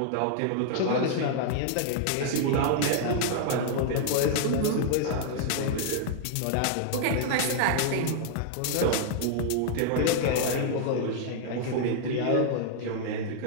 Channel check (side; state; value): both; different; correlation -0.01